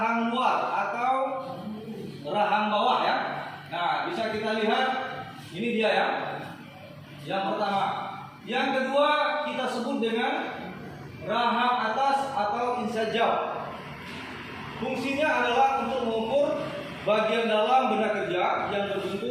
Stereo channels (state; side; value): identical; both; correlation 1.00